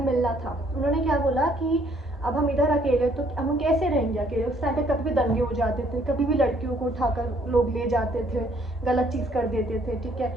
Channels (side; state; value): both; normal; correlation 0.64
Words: मिलना था, उन्होंने क्या बोला कि अब हम इधर अकेले, तो हम कैसे रहेंगे अकेले। उस टाइम पे कभी भी दंगे हो जाते थे, कभी भी लड़कियों को उठाकर लोग ले जाते थे, गलत चीज़ कर देते थे, ठीक है।